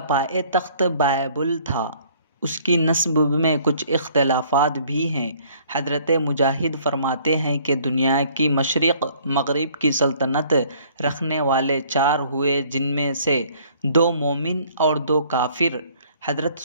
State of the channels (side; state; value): both; inverted; correlation -0.58